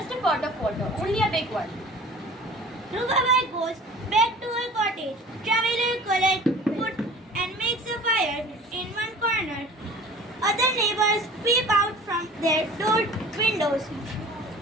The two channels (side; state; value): both; normal; correlation 0.45